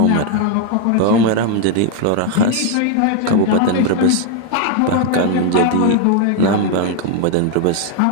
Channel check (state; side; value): different; both; correlation 0.01